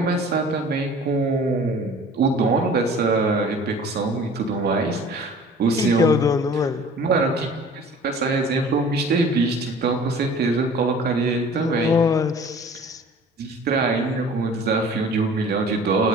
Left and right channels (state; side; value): normal; both; correlation 0.46